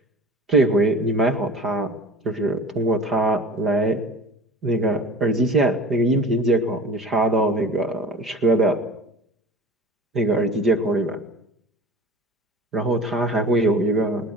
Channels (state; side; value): normal; both; correlation 0.38